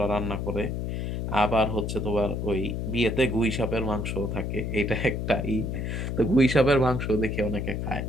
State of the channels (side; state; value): left; noise; hum, 2 dB below the sound